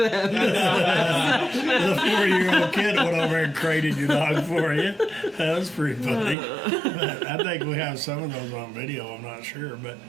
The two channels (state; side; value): drops out; left; at 6.4 s